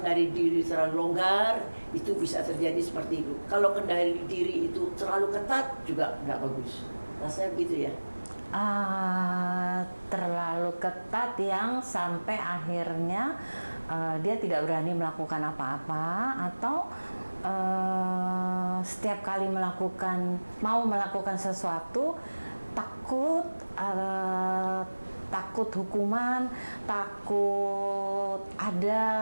diri terlalu longgar, itu bisa terjadi seperti itu. Kalau kendali diri itu terlalu ketat juga nggak bagus. Rasanya begitu ya. Terlalu ketat yang sampai akhirnya dia tidak berani melakukan apa-apa, atau setiap kali mau melakukan sesuatu takut hukuman, takut ada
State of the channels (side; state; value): both; inverted; correlation -1.00